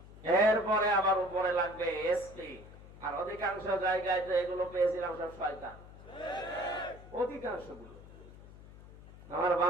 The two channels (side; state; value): left; noise; hum, 18 dB below the sound